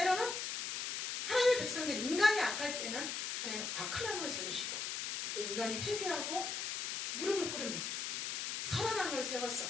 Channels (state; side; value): noise; left; hiss, 2 dB below the sound